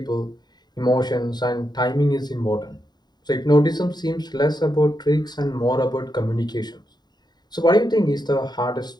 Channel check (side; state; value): right; late; 0.20 ms